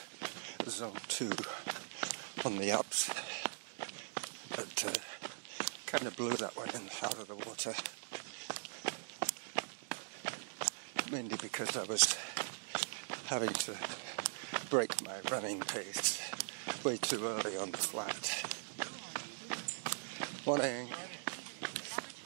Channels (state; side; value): silent; left; digital silence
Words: Zone 2 on the ups, but kind of blew that one out of the water. Mainly because I was having to break my running pace way too early on the flat. Morning.